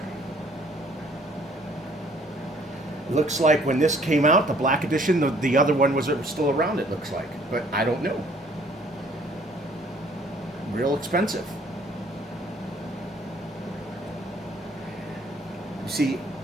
Looks like when this came out, the black edition, the other one was still around, it looks like. But I don't know. Real expensive. You see,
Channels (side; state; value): both; normal; correlation 0.59